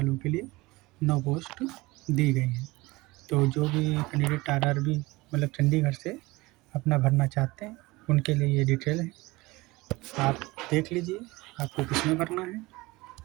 के लिए 9 पोस्ट दी गई हैं। तो जो भी कैंडिडेट आरआरबी मतलब चंडीगढ़ से अपना भरना चाहते हैं उनके लिए ये डिटेल है, आप देख लीजिए आपको किसमें भरना है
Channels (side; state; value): left; quieter; 21.6 dB